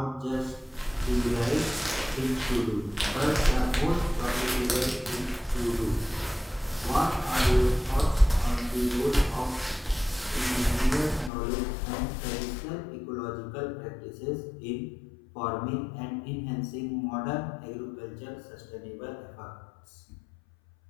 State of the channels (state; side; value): drops out; right; at 11.3 s